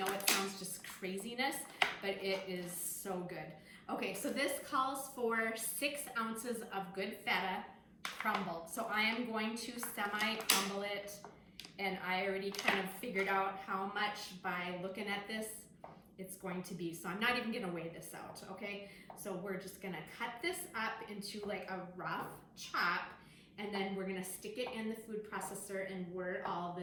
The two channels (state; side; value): identical; both; correlation 1.00